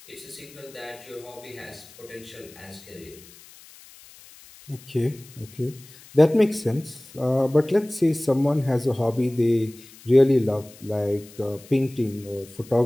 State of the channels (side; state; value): left; noise; hiss, 22 dB below the sound